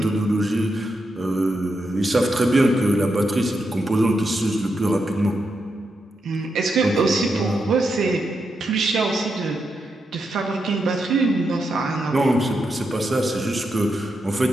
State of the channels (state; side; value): normal; both; correlation 0.84